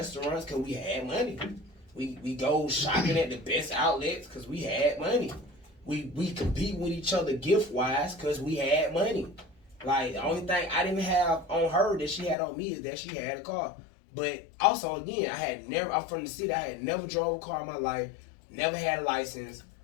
because we had money. We go shopping at the best outlets because we had money. We compete with each other gift-wise because we had money. Like, the only thing I didn't have on her that she had on me is that she had a car. But also, again, I'm from the city. I had never drove a car in my life, never had a license.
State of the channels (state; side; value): drops out; right; at 12.4 s